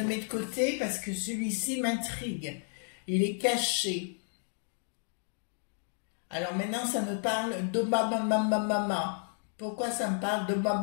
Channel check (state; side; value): silent; right; 56 dB below the other